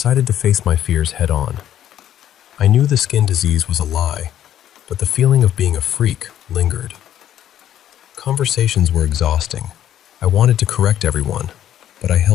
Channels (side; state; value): right; quieter; 11.3 dB